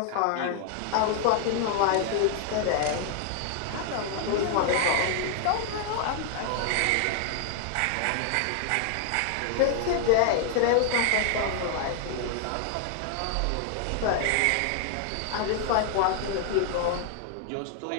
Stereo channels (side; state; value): both; different; correlation 0.00